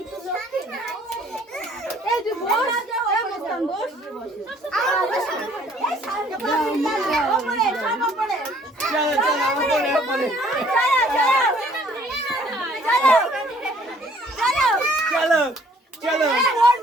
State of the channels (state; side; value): normal; both; correlation 0.59